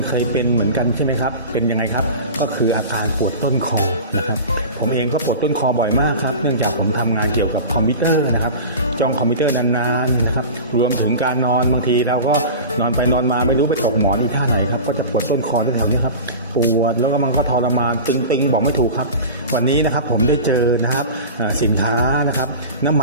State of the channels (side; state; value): both; inverted; correlation -0.33